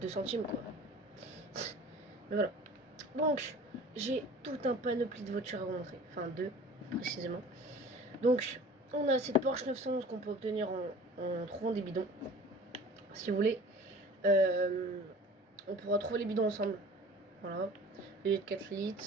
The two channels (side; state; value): both; normal; correlation 0.44